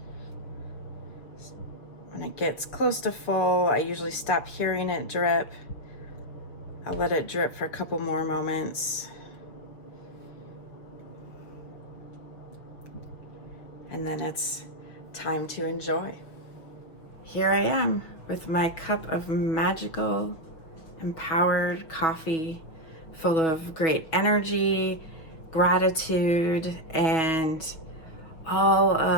When it gets close to full, I usually stop hearing it drip. I'll let it drip for a couple more moments. And then it's time to enjoy. Here I am with my cup of magical, empowered coffee full of great energy, gratitude, and all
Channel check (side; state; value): right; late; 6.1 ms